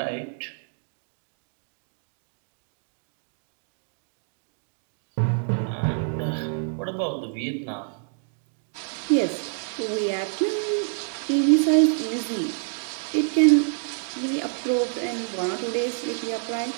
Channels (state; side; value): silent; left; 60 dB below the other